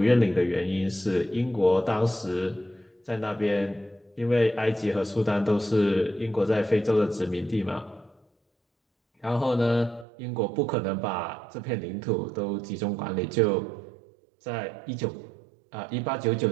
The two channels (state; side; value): drops out; left; at 10.1 s